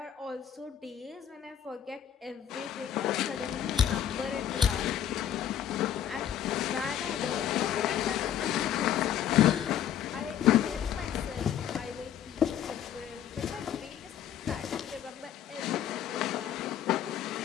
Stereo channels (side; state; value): right; quieter; 9.9 dB